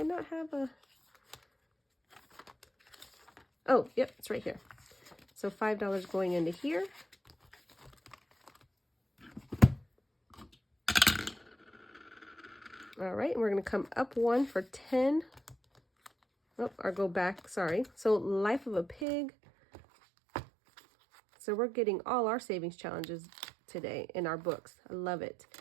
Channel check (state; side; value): drops out; left; at 19.1 s